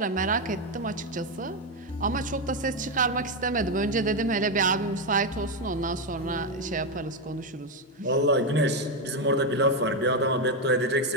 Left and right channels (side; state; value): both; normal; correlation 0.07